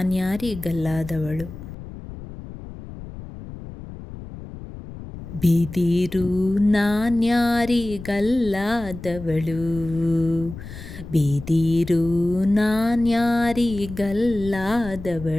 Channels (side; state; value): left; noise; rumble, 13 dB below the sound